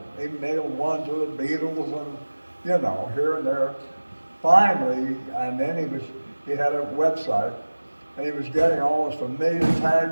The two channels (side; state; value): both; inverted; correlation -1.00